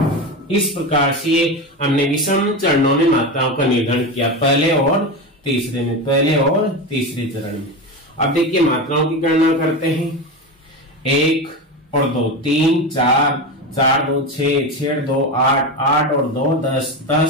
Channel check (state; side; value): normal; both; correlation 0.20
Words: इस प्रकार से हमने विषम चरणों में मात्राओं का निर्धारण किया, पहले और तीसरे में, पहले और तीसरे चरण में। अब देखिए मात्राओं की गणना करते हैं। 1 और 2 3, 4, 4 2 6, 6 2 8, 8 और 2 10,